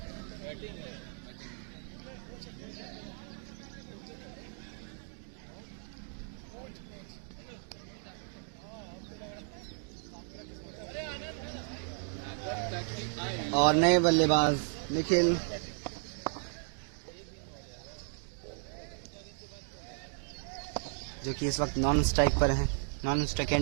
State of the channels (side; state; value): left; silent; 55 dB below the other